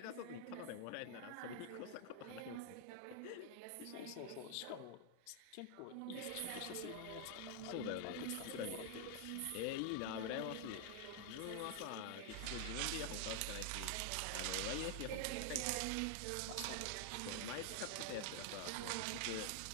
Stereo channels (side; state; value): both; different; correlation 0.00